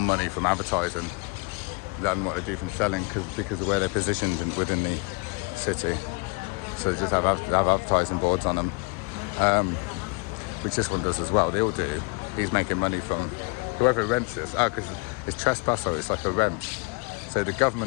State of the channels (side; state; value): right; quieter; 31.2 dB